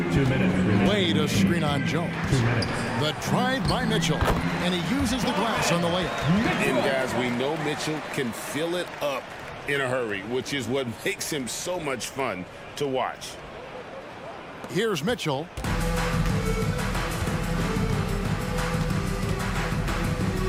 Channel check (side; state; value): both; identical; correlation 1.00